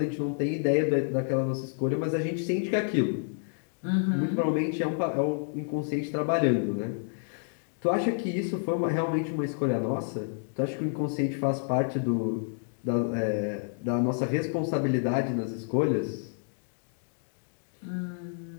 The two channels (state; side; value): silent; right; digital silence